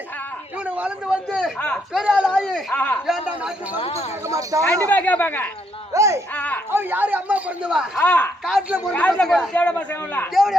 இவனு வளர்ந்து வந்து பெரிய ஆள் ஆகி ஏன்டா நாட்டு பங்கு கேட்க மாட்டான்? கண்டிப்பா கேட்பாங்க. அவன் யாரு அம்மா பிறந்தவா? காட்டுல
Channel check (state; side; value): normal; both; correlation 0.73